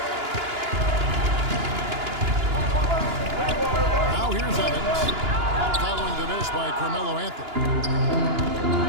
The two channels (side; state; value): left; late; 2.9 ms